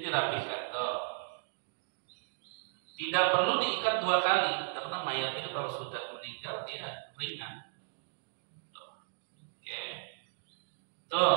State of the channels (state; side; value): silent; left; digital silence